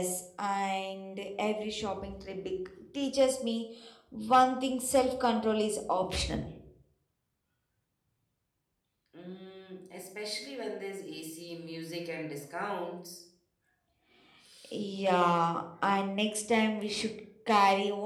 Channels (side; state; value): both; identical; correlation 1.00